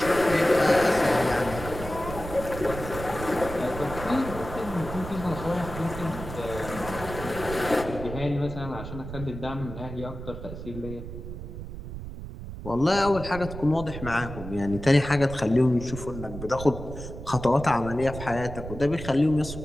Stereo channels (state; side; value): noise; right; rumble, 10 dB below the sound